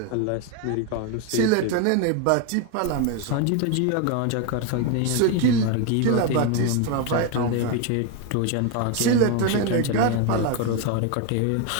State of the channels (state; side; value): different; both; correlation 0.02